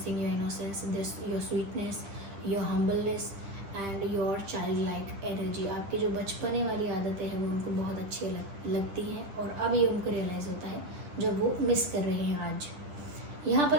your innocence, your sweetness, your humbleness and your child like energy. आपकी जो बचपने वाली आदतें हैं वो उनको बहुत अच्छी लगती हैं, और अब ये उनको रियलाइज़ होता है जब वो मिस कर रहे हैं आज। यहाँ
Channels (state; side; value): late; left; 10 ms